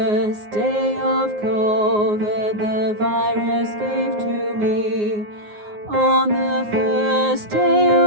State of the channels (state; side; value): late; left; 9.6 ms